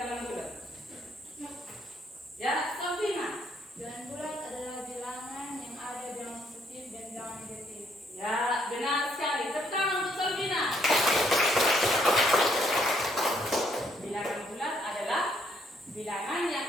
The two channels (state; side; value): normal; both; correlation 0.70